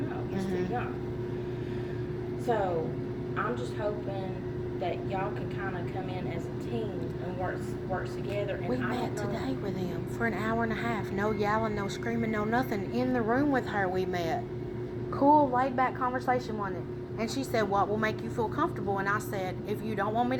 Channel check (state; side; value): identical; both; correlation 1.00